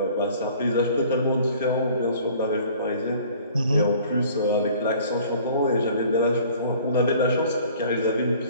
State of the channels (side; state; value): both; inverted; correlation -0.52